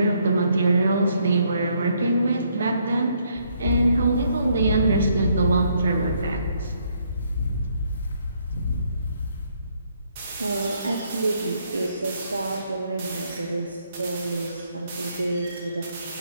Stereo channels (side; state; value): both; inverted; correlation -0.71